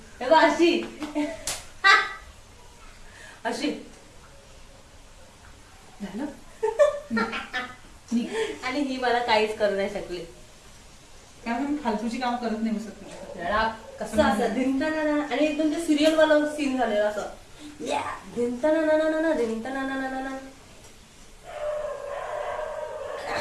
अशी अशी झालं. आणि ही मला काहीच करू नाही शकली. त्यामुळे मी फालतूची काम करत नाही बसत तुझ्याकडे. कसं असं धिंताना. आणि एकदम ते सिरियल वाला सीन झालेला असं. धिंताना धिंताना.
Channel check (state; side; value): identical; both; correlation 1.00